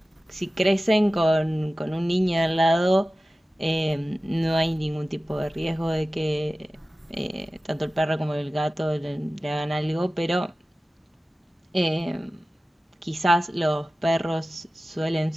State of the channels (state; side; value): normal; both; correlation 0.96